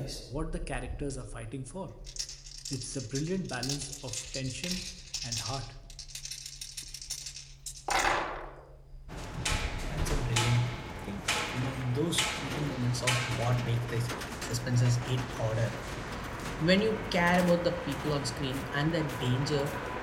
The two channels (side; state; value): both; identical; correlation 1.00